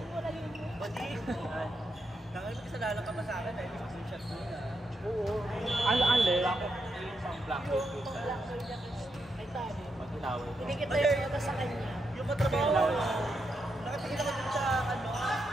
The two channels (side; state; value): both; normal; correlation 0.83